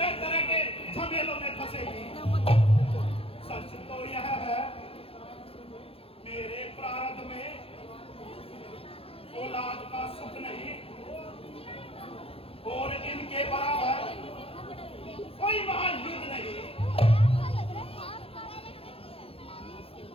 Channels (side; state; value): right; late; 0.27 ms